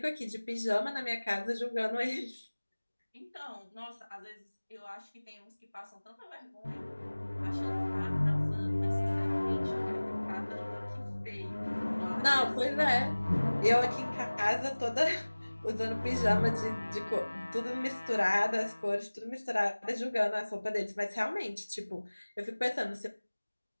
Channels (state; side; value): inverted; both; correlation -1.00